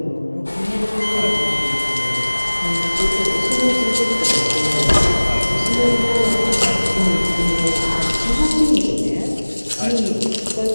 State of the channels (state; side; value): inverted; both; correlation -1.00